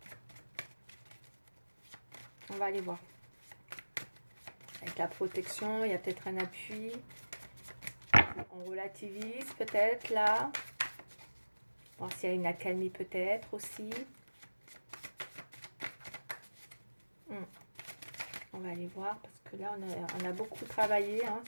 on va aller voir. Avec la protection, il y a peut-être un appui. On relativise peut-être là. Voir s'il y a une accalmie peut-être aussi. On va aller voir parce que là, on a beaucoup travaillé hein,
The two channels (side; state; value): both; inverted; correlation -1.00